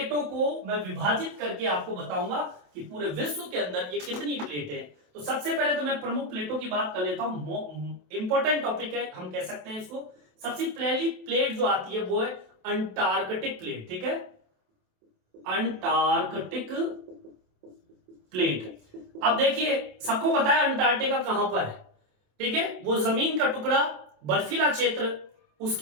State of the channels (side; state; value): left; late; 27 ms